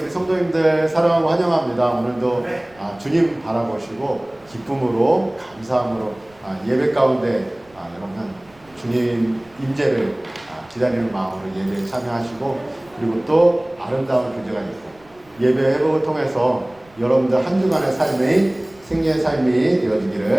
성도님들 사랑하고 환영합니다. 오늘도 주님 바라보시고 기쁨으로 감사함으로 예배 가운데 여러분 주님 임재를 기다리는 마음으로 예배에 참여하시고 그리고 또 아름다운 교제가 있고 예배 회복을 통해서 여러분들 한 주간의 삶의 승리의 삶이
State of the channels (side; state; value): right; noise; rumble, 30 dB below the sound